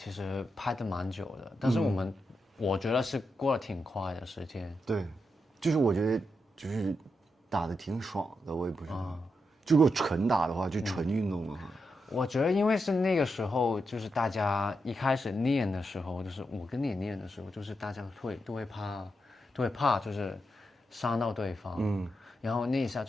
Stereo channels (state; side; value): normal; both; correlation 0.85